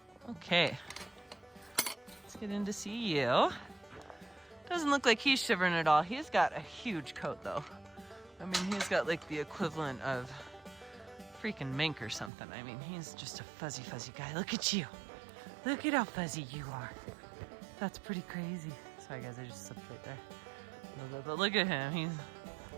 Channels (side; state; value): left; drops out; at 12.3 s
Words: Okay. Let's get in to see you. Doesn't look like he's shivering at all. He's got a huge coat, though. I mean, he's got like the equivalent of freaking mink or something. I mean, he's just a fuzzy, fuzzy guy. Look at you. Look at how fuzzy you are. That's pretty crazy. Sorry, guys, I just slipped right there a little bit. But look at him. He's...